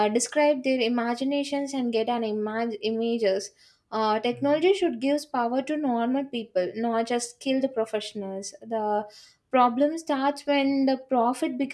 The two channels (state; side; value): identical; both; correlation 1.00